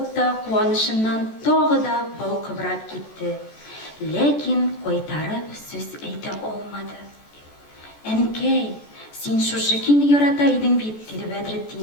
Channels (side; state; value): right; late; 14 ms